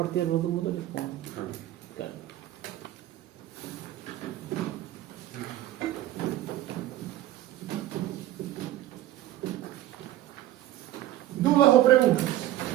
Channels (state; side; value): quieter; left; 13.9 dB